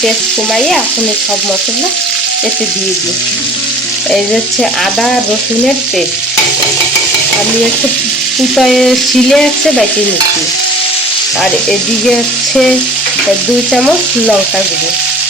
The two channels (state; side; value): normal; both; correlation 0.46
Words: পেস্ট কমাইয়ে এখন সব মশলা এতে দিয়ে দিই। এই যে হচ্ছে আদা রসুনের পেস্ট আমি একটু কুটায় শিলে হচ্ছে বেটে নিচ্ছি। আর এদিকে হচ্ছে 2 চামচ লঙ্কা গুঁড়ো,